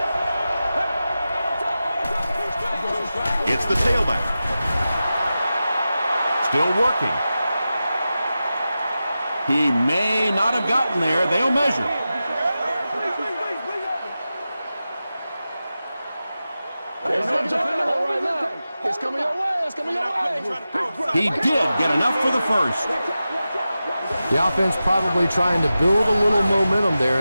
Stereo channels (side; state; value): both; inverted; correlation -0.93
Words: It's the tailback. Still working. He may not have gotten there. They'll measure. It's coming your way. It's coming your way. He did get enough for the first. The offense probably trying to build a little momentum there.